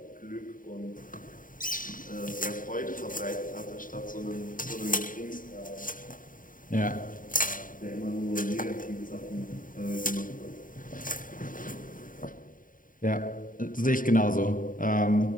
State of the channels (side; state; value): right; late; 0.39 ms